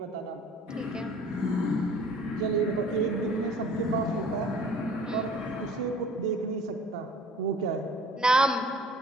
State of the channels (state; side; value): normal; both; correlation 0.49